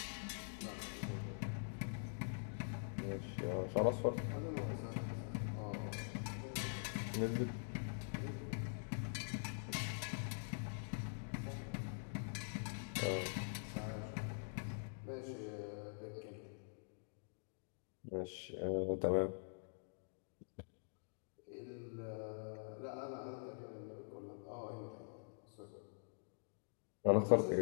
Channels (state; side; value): silent; right; digital silence